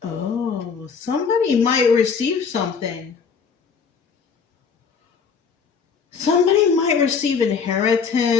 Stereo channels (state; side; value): quieter; right; 6.0 dB